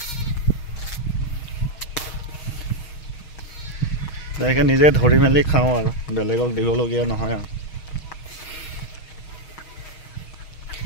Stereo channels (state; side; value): late; right; 6.4 ms